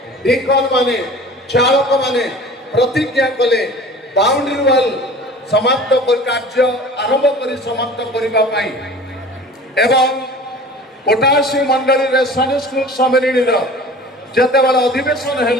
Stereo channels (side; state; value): both; normal; correlation 0.42